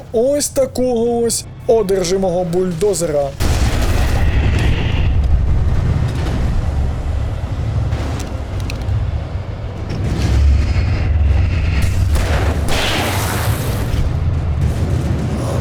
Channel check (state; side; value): identical; both; correlation 1.00